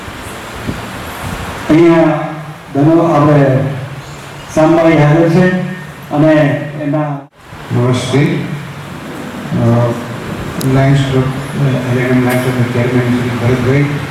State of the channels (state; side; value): identical; both; correlation 1.00